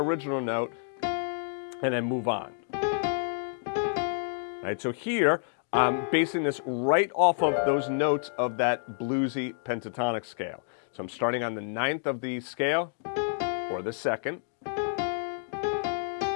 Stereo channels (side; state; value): right; silent; digital silence